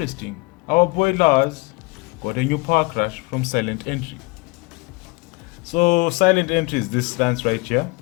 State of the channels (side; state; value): right; quieter; 26.8 dB